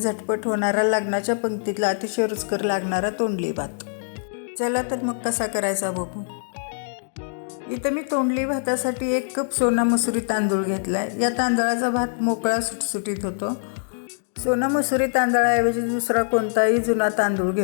होणारा लग्नाच्या पंक्तीतला अतिशय रुचकर लागणारा तोंडली भात। चला तर मग कसा करायचा बघू। इथं मी तोंडली भातासाठी 1 कप सोना मसुरी तांदूळ घेतलाय। या तांदळाचा भात मोकळा सुटसुटीत होतो। सोना मसुरी तांदळाऐवजी दुसरा कोणताही जुना तांदूळ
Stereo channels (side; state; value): right; silent; 63 dB below the other